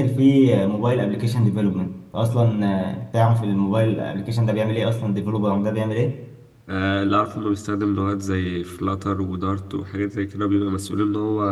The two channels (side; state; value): both; identical; correlation 1.00